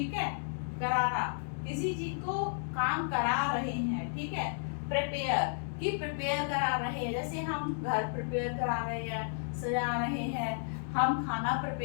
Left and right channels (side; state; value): right; silent; digital silence